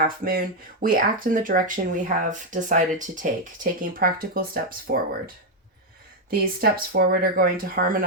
moon, we act in the direction we have decided to take, taking practical steps forward. These steps forward are going to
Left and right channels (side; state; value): both; normal; correlation 0.02